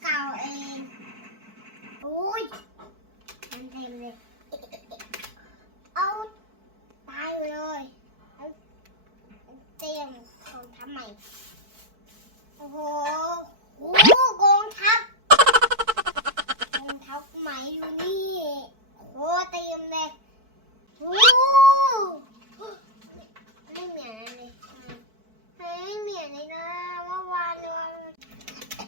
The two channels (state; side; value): late; left; 4.6 ms